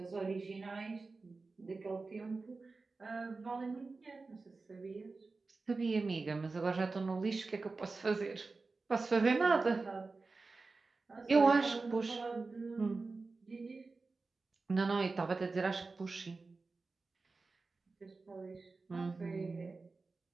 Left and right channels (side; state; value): left; quieter; 3.9 dB